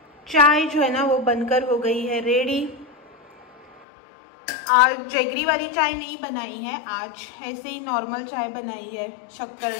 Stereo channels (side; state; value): right; drops out; at 3.9 s